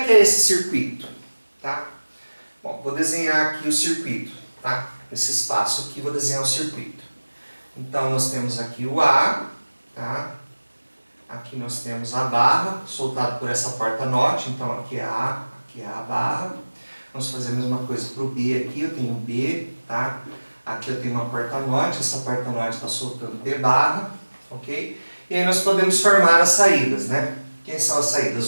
que é esse circuito, tá? Bom, vou desenhar aqui o circuito, tá? Esse espaço aqui, vou desenhar o circuito. Então, nós temos aqui o A, tá? Aqui nós temos a barra, soltado por essa porta NOT. Então, aqui é a barra. Vamos fazer a mesma coisa para o B aqui. Eu tenho B, tá? Aqui eu tenho uma porta NOT. Essa porta NOT está soltando B barra, ok? E aí nós podemos formar as saídas, né? Quem são as saídas?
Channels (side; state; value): both; inverted; correlation -1.00